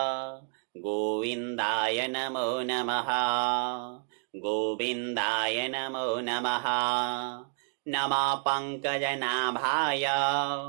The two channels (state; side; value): silent; left; 58 dB below the other